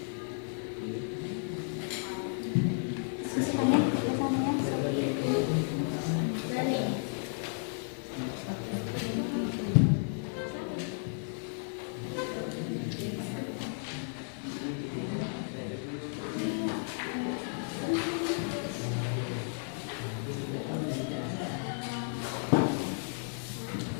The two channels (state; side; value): silent; right; 56 dB below the other